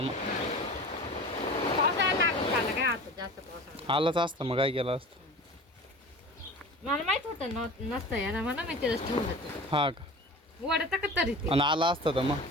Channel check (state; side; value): normal; both; correlation 0.37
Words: पावसाळा लागत झाला काय आता जास्त पावसाळा आलाच असतं मग काय केलं असतं मला माहित होतं नसतं यार मला माहिती ठेवलं ते हा का वडत का तरी ते आणि आला असतं तर मग